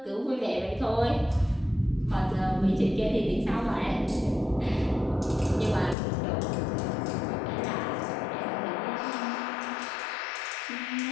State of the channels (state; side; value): drops out; right; at 6.0 s